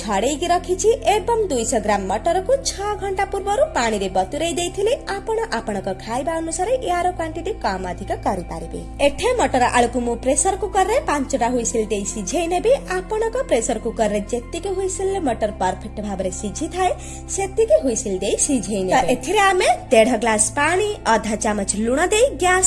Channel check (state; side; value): identical; both; correlation 1.00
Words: रखिछि एवं 200 ग्राम मटर को 6 घंटा पूर्व पानी रे बतुरई देइथिले आपण आपनक खाइबा अनुसार यार क्वांटिटी कम अधिक करि पारिबे। एठे मटर आलू को मु प्रेशर कुकर रे 5टा हुइसिल देइ सिझेइ नेबे। आपनक प्रेशर कुकर रे जेतिके हुइसिल मटर परफेक्ट भाबरे सिझी थाए सेतिके हुइसिल देइ सिझेइ नेबे। एथिरे आमे 1.5 ग्लास पानी आधा चमच लूण देइ